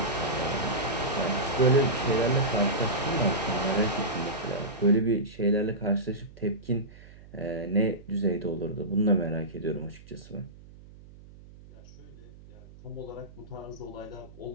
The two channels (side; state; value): right; noise; hum, 20 dB below the sound